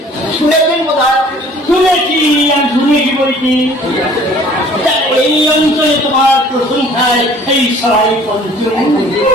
শুনেছেন বোধ হয়? শুনেছি, আমি শুনেছি বলছি। তা এই অঞ্চলে তোমার প্রশংসায় এই সবাই পঞ্চম।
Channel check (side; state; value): both; normal; correlation 0.52